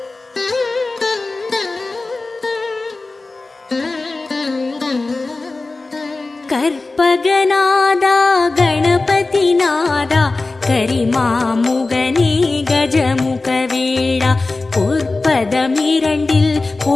கற்பகநாதா கணபதிநாதா கரிமாமுகனே கஜமுகவேளா, பொற்பதமிரண்டில்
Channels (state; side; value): quieter; right; 3.4 dB